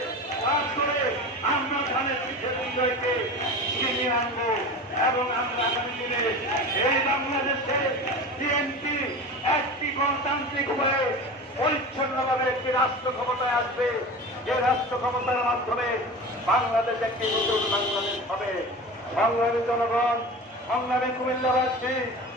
কাজ করে আমরা ধানের পিঠে বিজয়কে ছিনিয়ে আনবো এবং আমরা আগামী দিনে এই বাংলাদেশে বিএনপি একটি গণতান্ত্রিক হয়ে পরিচ্ছন্নভাবে একটি রাষ্ট্র ক্ষমতায় আসবে, যে রাষ্ট্র ক্ষমতার মাধ্যমে বাংলাদেশ একটি নতুন বাংলাদেশ হবে। সংগ্রামী জনগণ, সংগ্রামী কুমিল্লাবাসী,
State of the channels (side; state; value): both; normal; correlation 0.32